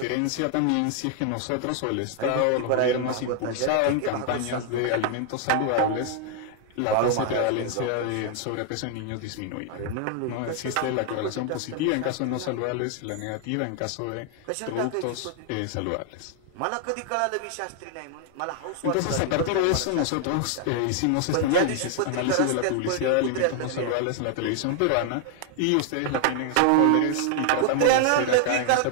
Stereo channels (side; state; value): both; different; correlation 0.00